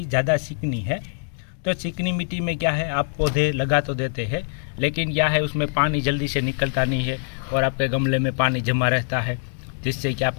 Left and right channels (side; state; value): right; silent; digital silence